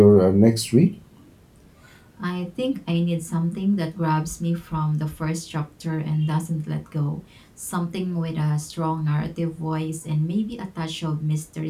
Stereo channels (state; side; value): identical; both; correlation 1.00